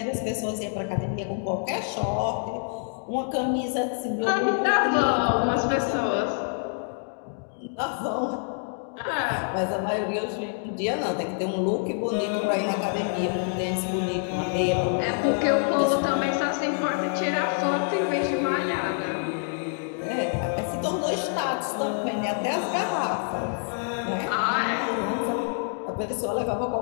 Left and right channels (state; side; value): silent; right; 57 dB below the other